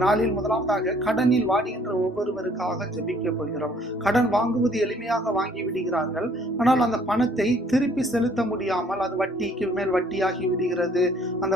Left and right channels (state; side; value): normal; both; correlation 0.60